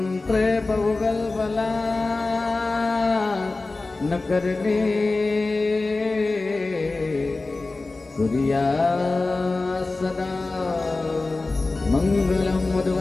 बहुगल्पला न करणे कुर्या सदा मंगलम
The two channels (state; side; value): quieter; right; 3.4 dB